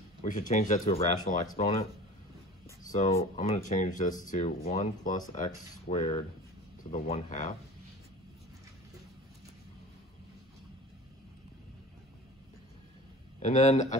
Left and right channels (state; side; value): normal; both; correlation 0.39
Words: we should change that to a rational exponent. So I'm going to change this to 1 plus x squared to the 1/2. And then I